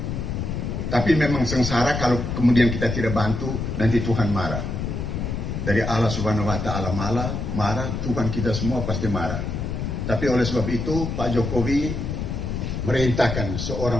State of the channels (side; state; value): left; noise; rumble, 3 dB below the sound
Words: Tapi memang sengsara kalau kemudian kita tidak bantu, nanti Tuhan marah. Dari Allah Subhanahu wa taala marah, Tuhan kita semua pasti marah. Tapi oleh sebab itu Pak Jokowi merintahkan